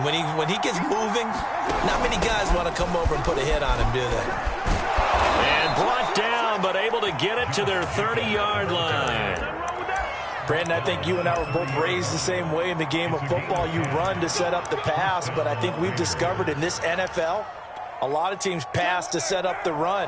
when he gets moving, not many guys want to come over and put a hit on him, do they? And brought down, but able to get it to their 30-yard line. Brandon, I think you and I were both raised the same way in the game of football. You run to set up the pass, but I think we've discovered in this NFL, a lot of teams pass to set up the run.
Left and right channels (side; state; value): both; identical; correlation 1.00